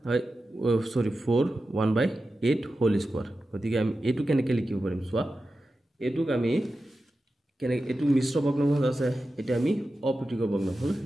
1/8 হোল স্কয়াৰ গতিকে আমি এটো কেনেকৈ লিখিব পাৰিম চোৱা এটোক আমি কেনেকৈ এটো মিশ্ৰ ভগ্নাংশ আছে এটা আমি অপ্ৰীতিকৰ ভগ্নাংশ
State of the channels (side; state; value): both; normal; correlation 0.92